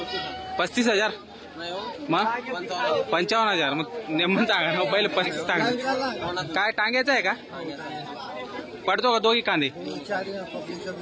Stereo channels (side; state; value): both; identical; correlation 1.00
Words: 35,000. मग 55,000. मग नेमकं सांगा ना पहिले. 35 सांगा. काय टांग्याचं आहे का? पडतो का दोघी कांदे?